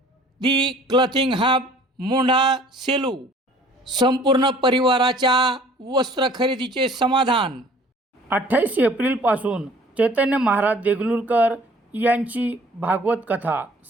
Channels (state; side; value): normal; both; correlation 0.53